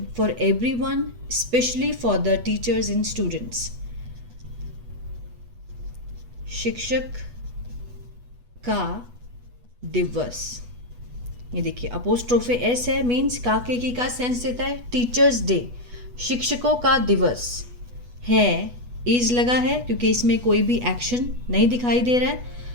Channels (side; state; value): left; late; 8.2 ms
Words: for everyone, especially for the teachers and students. शिक्षक का दिवस, ये देखिए अपोस्ट्रोफे एस है, मीन्स का के की का सेंस देता है। टीचर्स डे, शिक्षकों का दिवस है। इज लगा है क्योंकि इसमें कोई भी एक्शन नहीं दिखाई दे रहा है,